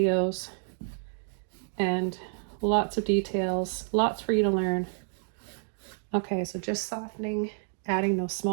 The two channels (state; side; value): silent; left; digital silence